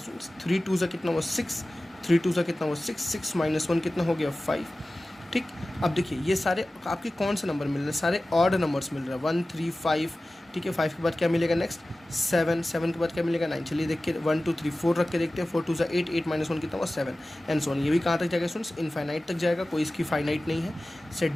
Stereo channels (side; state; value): both; normal; correlation 0.96